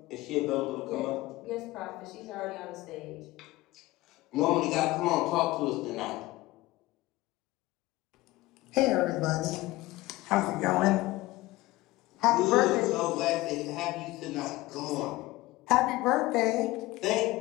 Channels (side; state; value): right; quieter; 19.0 dB